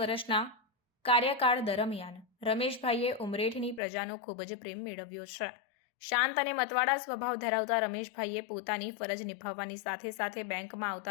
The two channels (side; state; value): right; drops out; at 3.8 s